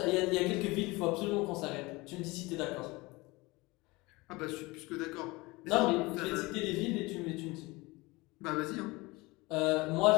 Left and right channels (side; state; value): right; quieter; 23.0 dB